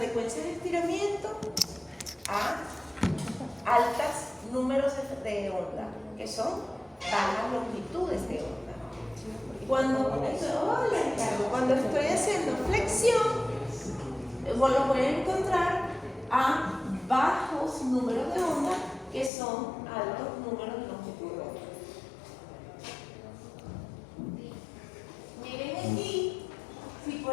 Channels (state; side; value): drops out; right; at 19.3 s